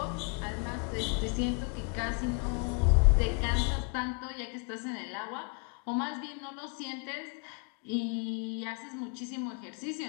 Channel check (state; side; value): quieter; right; 33.4 dB